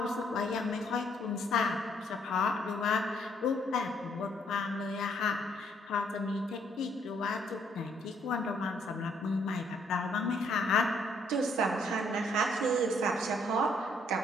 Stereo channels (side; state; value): both; normal; correlation 0.68